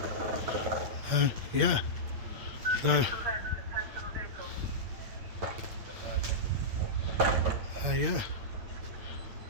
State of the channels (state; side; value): late; left; 8.7 ms